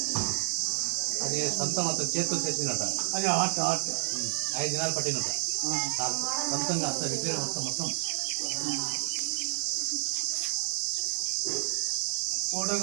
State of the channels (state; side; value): silent; left; digital silence